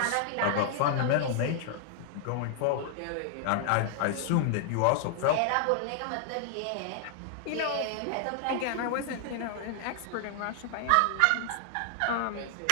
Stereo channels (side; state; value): both; different; correlation 0.00